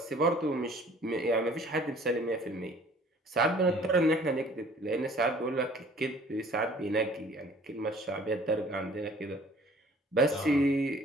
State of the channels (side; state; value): both; normal; correlation 0.53